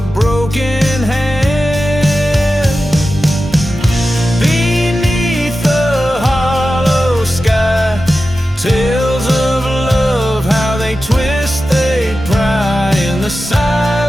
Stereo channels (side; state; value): both; normal; correlation 0.93